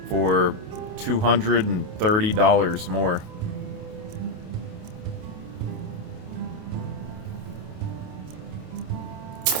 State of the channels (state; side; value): late; left; 28 ms